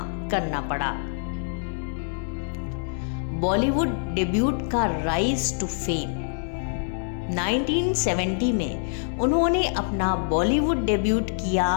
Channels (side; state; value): right; silent; 61 dB below the other